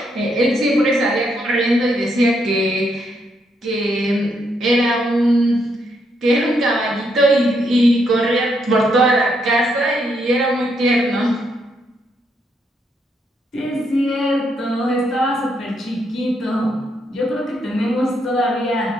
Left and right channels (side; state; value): both; normal; correlation 0.76